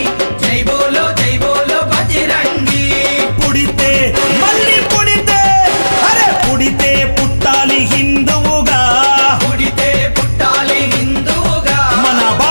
జై బోలో బజరంగి పుడితే మళ్ళీ పుడితే అరే పుడితే పుట్టాలి హిందువుగా పుడితే పుట్టాలి హిందువుగా మన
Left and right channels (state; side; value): inverted; both; correlation -1.00